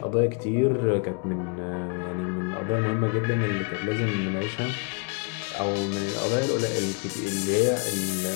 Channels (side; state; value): right; quieter; 35.9 dB